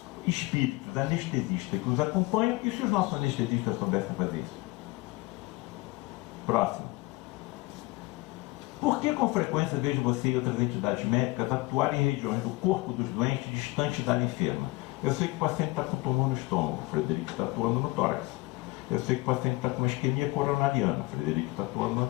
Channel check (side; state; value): right; quieter; 22.5 dB